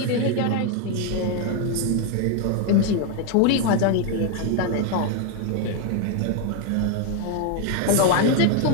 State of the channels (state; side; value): different; both; correlation 0.01